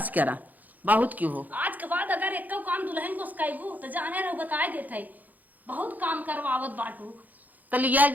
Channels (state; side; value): late; left; 0.082 ms